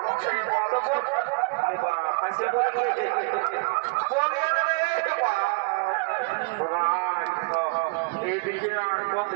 তো বাবা কাছে বলিয়ে বলিয়ে রে বাবা এইদিকে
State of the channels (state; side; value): quieter; left; 32.8 dB